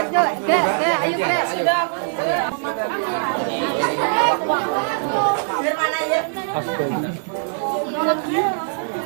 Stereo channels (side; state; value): left; silent; digital silence